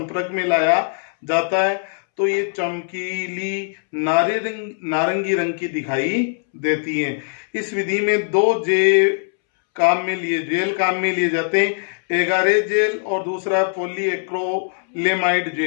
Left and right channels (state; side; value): silent; right; 65 dB below the other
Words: में लाया जाता है तो ये चमकीली नारंगी रंग की दिखाई देती है। इस विधि में दो जेल काम में लिए जाते हैं, एगारेज जेल और दूसरा पॉलीएक्रिलेमाइड